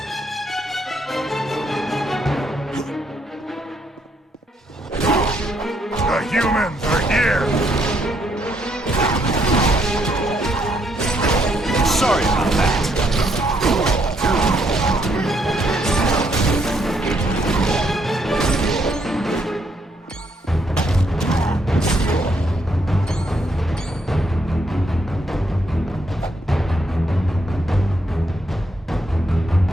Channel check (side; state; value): both; normal; correlation 0.73